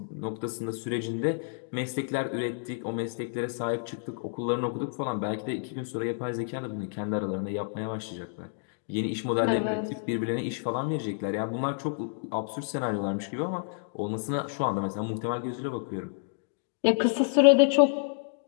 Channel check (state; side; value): silent; right; digital silence